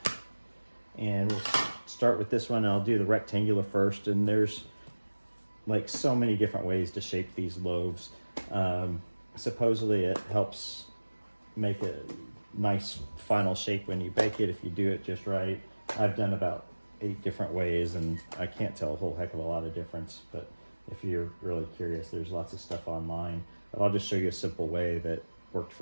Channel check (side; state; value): both; inverted; correlation -1.00